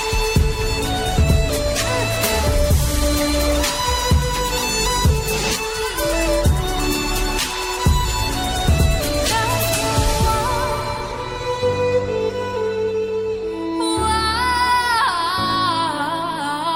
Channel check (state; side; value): identical; both; correlation 1.00